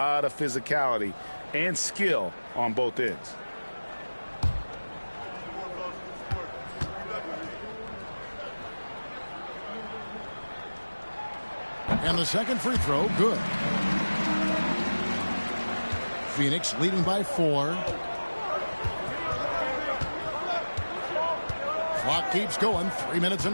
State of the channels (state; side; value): inverted; both; correlation -1.00